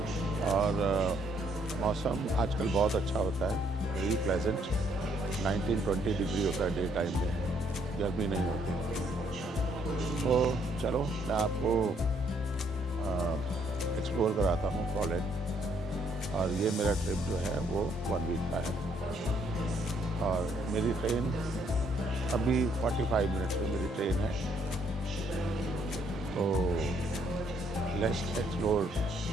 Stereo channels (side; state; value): both; normal; correlation 0.68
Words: और मौसम आजकल बहुत अच्छा होता है, वेरी प्लेजेंट। 19-20 डिग्री होता है डे टाइम में, गर्मी नहीं होती। तो चलो मैं आपको एक्सप्लोर कराता हूँ पोलैंड। और ये मेरा ट्रिप जो है वो 1 वीक का है और मेरी ट्रेन अभी 45 मिनट्स में मेरी ट्रेन है। तो लेट्स एक्सप्लोर